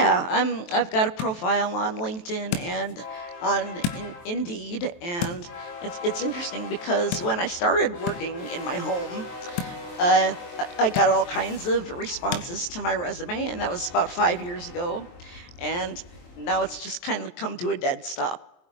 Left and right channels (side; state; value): right; late; 23 ms